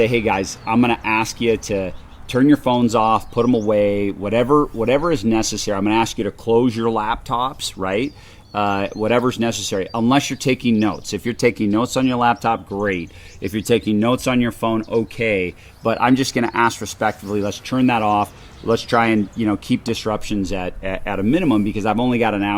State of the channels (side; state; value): both; identical; correlation 1.00